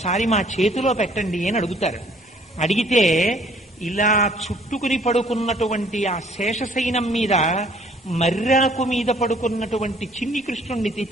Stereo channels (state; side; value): normal; both; correlation 0.59